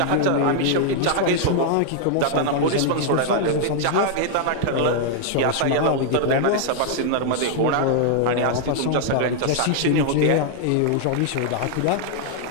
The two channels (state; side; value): different; both; correlation 0.00